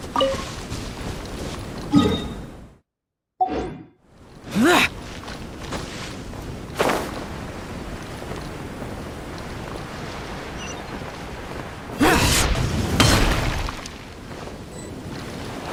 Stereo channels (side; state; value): both; identical; correlation 1.00